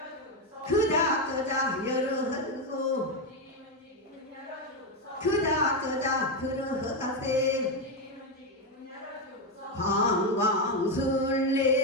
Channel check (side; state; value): both; normal; correlation 0.07